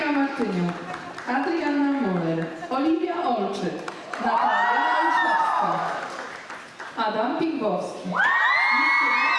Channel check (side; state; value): both; identical; correlation 1.00